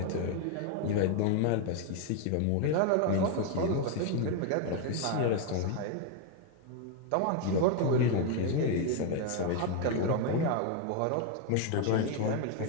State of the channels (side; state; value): both; different; correlation 0.01